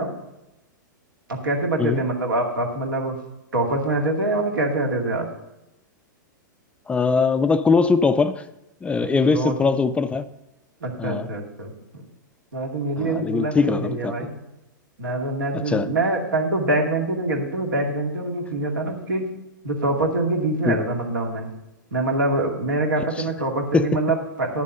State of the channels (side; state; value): both; normal; correlation 0.21